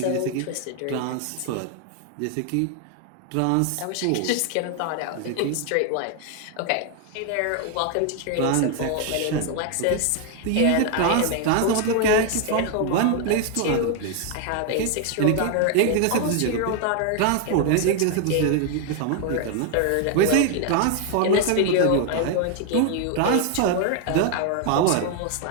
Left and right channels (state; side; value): different; both; correlation 0.01